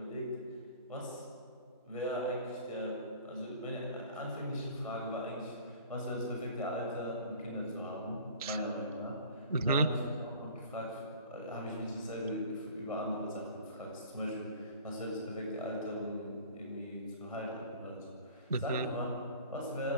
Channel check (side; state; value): both; inverted; correlation -0.46